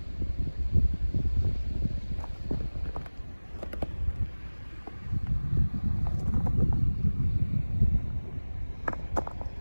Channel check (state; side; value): inverted; both; correlation -1.00